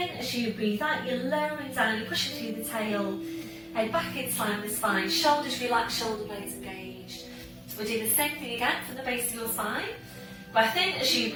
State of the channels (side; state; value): both; identical; correlation 1.00